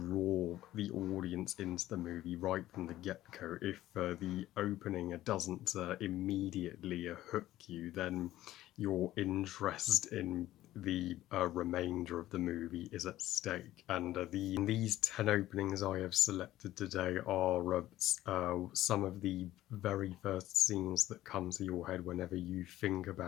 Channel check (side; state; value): right; quieter; 14.6 dB